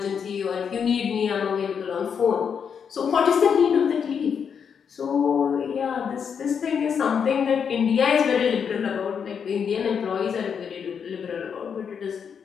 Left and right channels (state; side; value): quieter; right; 7.0 dB